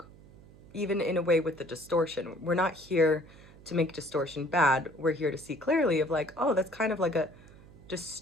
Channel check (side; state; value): right; noise; hum, 22 dB below the sound